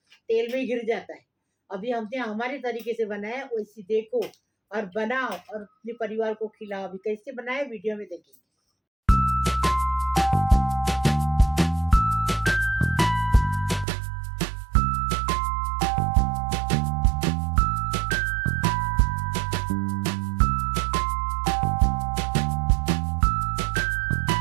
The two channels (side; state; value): left; drops out; at 13.9 s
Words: तेल में गिर जाता है। अभी हमने हमारे तरीके से बनाया, वैसी देखो और बनाओ और अपने परिवार को खिलाओ। अभी कैसे बनाए वीडियो में देखेंगे।